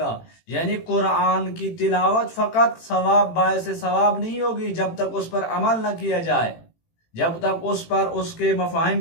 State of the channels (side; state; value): right; late; 18 ms